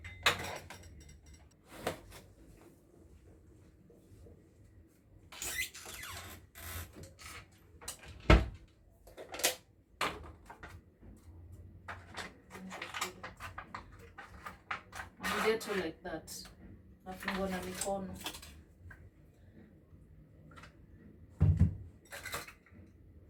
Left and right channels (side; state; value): both; identical; correlation 1.00